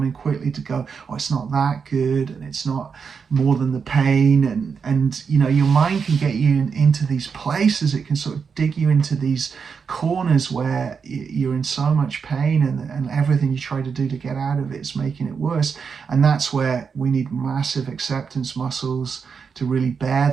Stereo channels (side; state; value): left; quieter; 6.0 dB